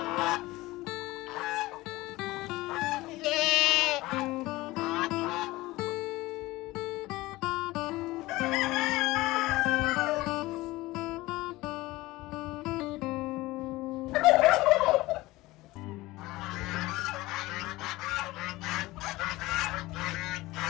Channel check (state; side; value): quieter; right; 19.4 dB